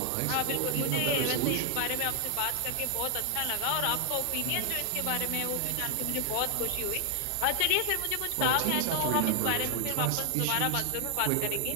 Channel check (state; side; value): different; both; correlation 0.00